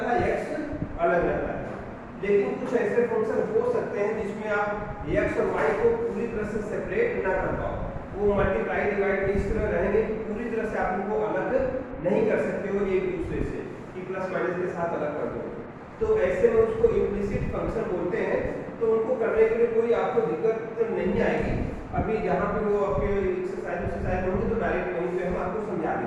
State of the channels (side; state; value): both; identical; correlation 1.00